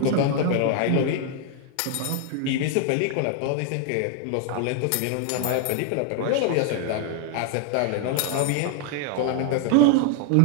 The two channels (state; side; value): different; both; correlation 0.00